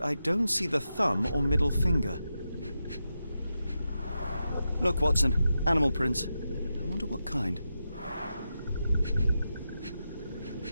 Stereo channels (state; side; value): inverted; both; correlation -0.88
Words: I don't see the thumb or middle finger. Look, Watson, animal prints. I wonder what kind.